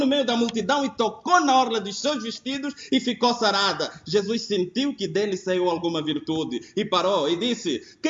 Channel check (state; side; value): identical; both; correlation 1.00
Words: meio da multidão e tocou na orla dos seus vestidos e ficou sarada. Jesus sentiu que dele saiu alguma virtude e parou e disse,